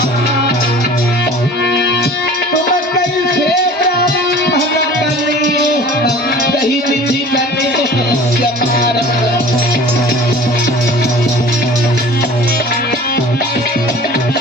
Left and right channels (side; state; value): both; normal; correlation 0.44